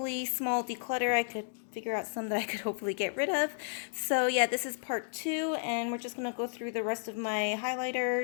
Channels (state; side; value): silent; right; digital silence